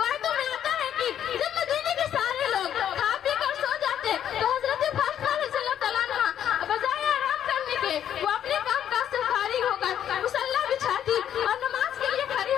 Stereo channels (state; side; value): quieter; right; 10.0 dB